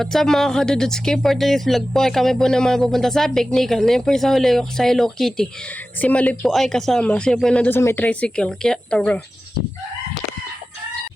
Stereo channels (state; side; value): normal; both; correlation 0.94